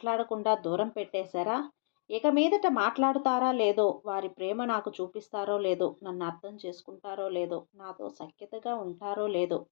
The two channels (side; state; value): right; silent; digital silence